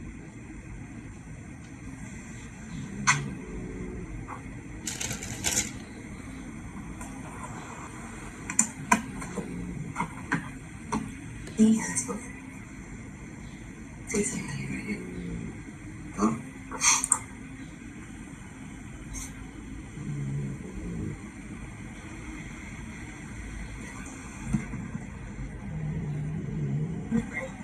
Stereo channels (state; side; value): identical; both; correlation 1.00